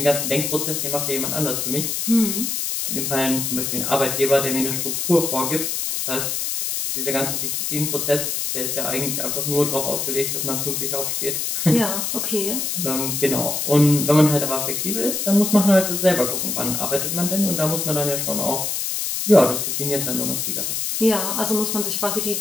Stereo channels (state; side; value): noise; left; hiss, 1 dB below the sound